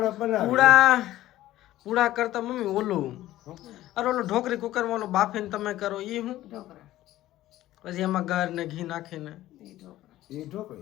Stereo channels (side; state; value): right; quieter; 14.9 dB